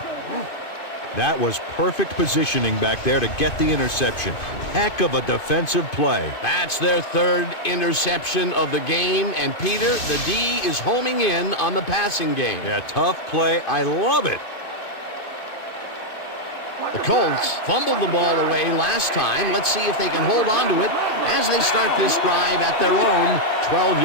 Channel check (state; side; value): late; right; 2.5 ms